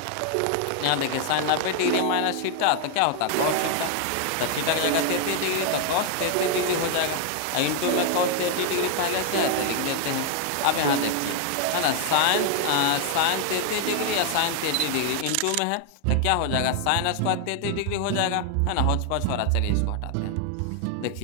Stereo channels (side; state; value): both; different; correlation 0.00